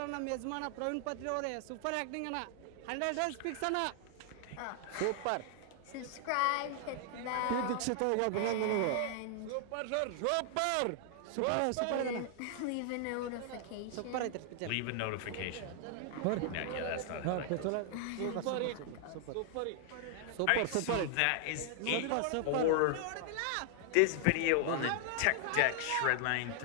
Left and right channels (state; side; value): different; both; correlation 0.00